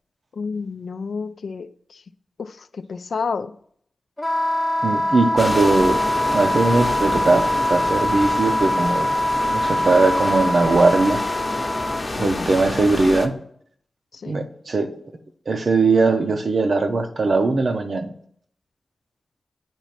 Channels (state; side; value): normal; both; correlation 0.92